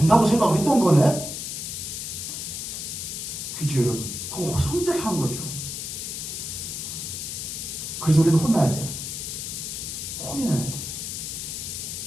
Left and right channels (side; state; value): left; noise; hiss, 5 dB below the sound